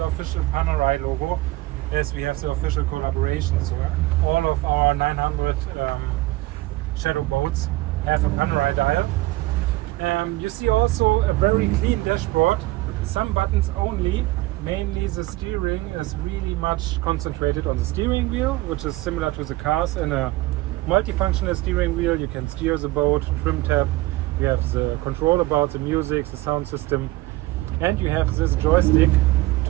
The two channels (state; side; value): quieter; left; 19.2 dB